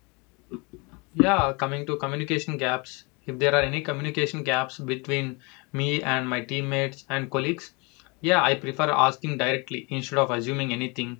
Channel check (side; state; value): right; quieter; 29.2 dB